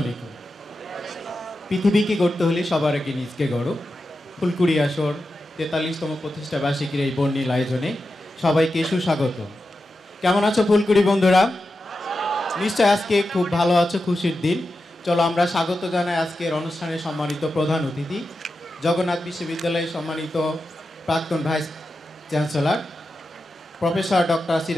আলাইকুম। পৃথিবীকে গড়তে হলে সবার আগে নিজকে গড়ো। ফুলকুড়ি আসর ৪৩তম প্রতিষ্ঠা বার্ষিকীর এই বর্ণিল আয়োজনে সবাইকে সুস্বাগত। কেমন আছো ফুলকুড়ি বন্ধুরা? নিশ্চয় আজকে খুব ভালো আছো, খুশির দিন। চলো আমরা স্বাগত জানাই আজকের অনুষ্ঠানের সম্মানিত প্রধান অতিথি, জগন্নাথ বিশ্ববিদ্যালয়ের সম্মানিত প্রাক্তন vice chancellor professor doctor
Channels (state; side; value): normal; both; correlation 0.90